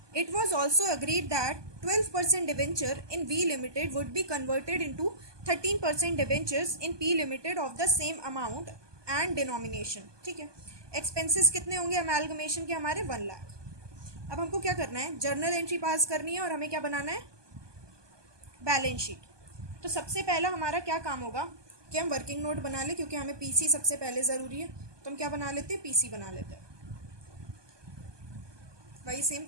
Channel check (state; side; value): late; left; 1.2 ms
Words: It was also agreed that 12% debenture in V Limited would be converted into 13% debentures in P Limited of the same amount and denomination, ठीक है। एक्सपेंसेस कितने होंगे अमेलगमेशन के, हमारे 1 लाख। अब हमको क्या करना है, जर्नल एंट्री पास करनी है और हमें क्या बनाना है, बैलेंस शीट। तो सबसे पहला हमारा क्या काम होगा कि हम वर्किंग नोट बना ले, क्योंकि हमें पीसी सबसे पहले ज़रूरी है, तो हम क्या बना लेते हैं, पीसी बना लेते हैं। वही सेम